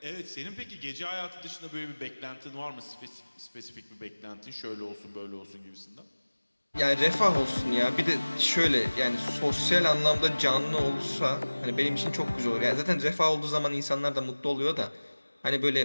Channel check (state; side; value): inverted; both; correlation -1.00